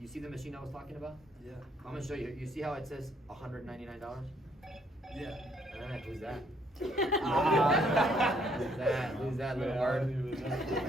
You see the machine I was talking about? Yeah. I'm gonna show you. You see how it says $199? Yeah. Who's that? Who's that little word?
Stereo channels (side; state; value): both; normal; correlation 0.68